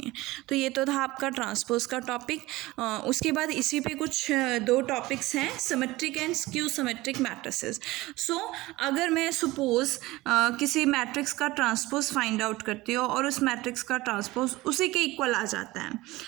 तो ये तो था आपका ट्रांसपोज का टॉपिक। उसके बाद इसी पे कुछ दो टॉपिक्स हैं, symmetric and skew symmetric matrices. So अगर मैं सपोज किसी मैट्रिक्स का ट्रांसपोज फाइंड आउट करती हूँ और उस मैट्रिक्स का ट्रांसपोज उसी के इक्वल आ जाता है,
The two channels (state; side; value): quieter; left; 19.4 dB